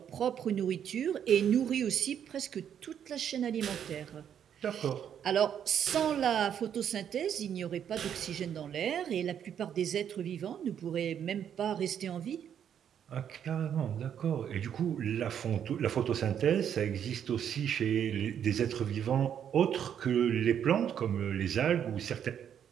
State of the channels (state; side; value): quieter; left; 8.9 dB